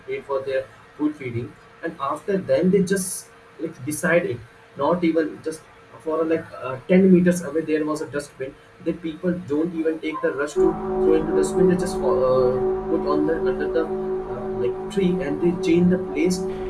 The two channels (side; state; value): both; identical; correlation 1.00